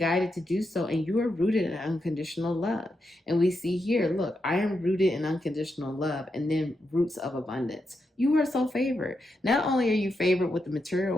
to do so, and you are rooted in unconditional love. And we see here, look, I am rooted in unconditional love, and then roots of abundance. You are so favored. Not only are you favored with the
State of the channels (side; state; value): both; normal; correlation 0.85